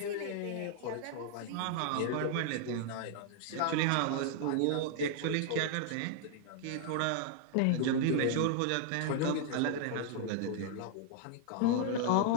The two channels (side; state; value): both; different; correlation 0.00